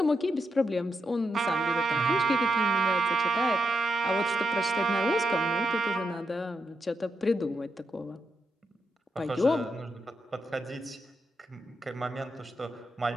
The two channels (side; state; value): both; normal; correlation 0.83